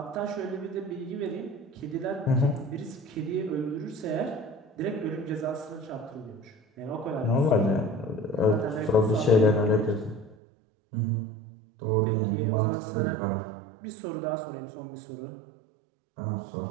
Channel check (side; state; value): left; drops out; at 10.4 s